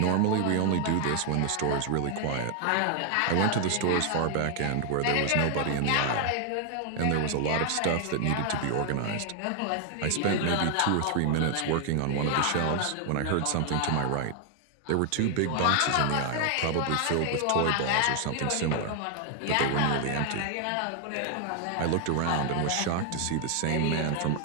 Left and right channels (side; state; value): both; different; correlation 0.00